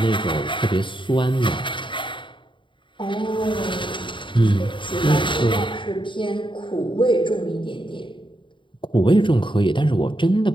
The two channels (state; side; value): late; right; 0.24 ms